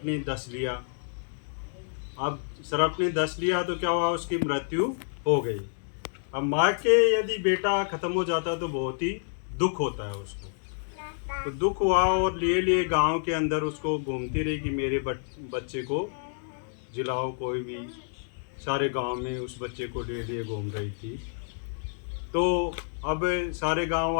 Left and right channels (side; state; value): right; silent; 59 dB below the other